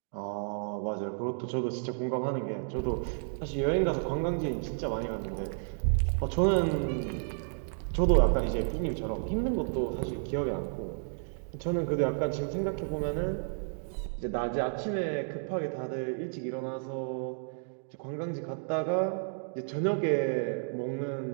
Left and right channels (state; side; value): silent; left; digital silence